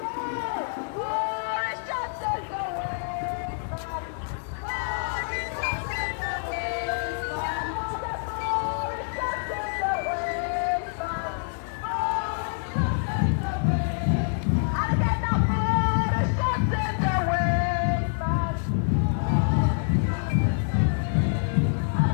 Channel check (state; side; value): silent; right; digital silence